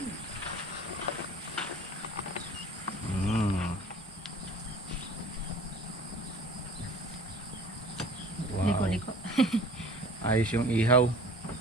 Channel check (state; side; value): normal; both; correlation 0.45